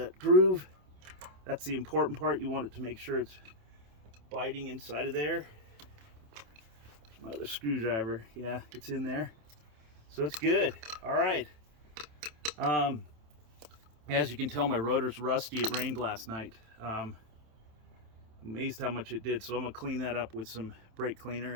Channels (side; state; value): left; late; 27 ms